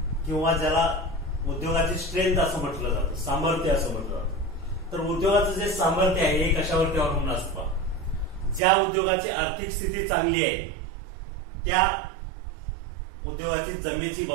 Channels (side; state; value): left; drops out; at 8.6 s